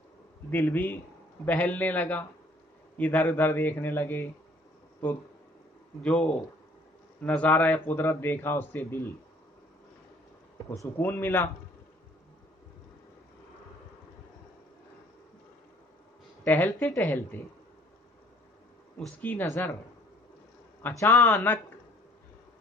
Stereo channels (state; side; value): normal; both; correlation 0.58